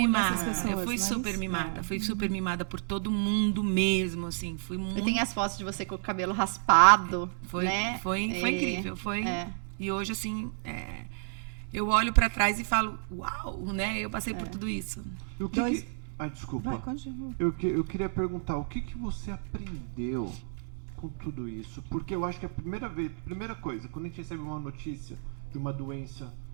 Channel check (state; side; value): silent; left; 57 dB below the other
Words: mimada. essas pessoas, Eu fui mas- super mimada. Fui super mimada por todo mundo mesmo, assim. Fui muito... Eu tenho as fotos de você com o cabelo raspado, Foi, né? foi incrível, foi. É. E hoje, assim, eu olho pra trás e falo, uau, né? Eu passei por tudo isso. E o que Dois- que... Ai, desculpa. Vai, continua. Eu queria perguntar, o que você aprendeu com tudo isso? Porque eu acho que a primeira coisa, quando a gente recebe uma notícia de uma doença